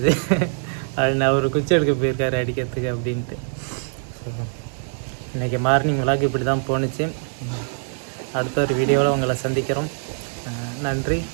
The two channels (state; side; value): silent; left; digital silence